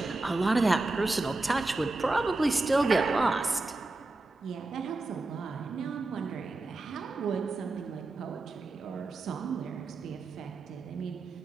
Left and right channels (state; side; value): quieter; left; 3.1 dB